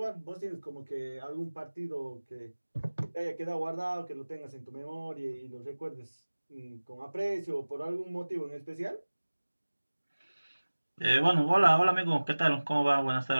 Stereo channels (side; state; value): both; inverted; correlation -1.00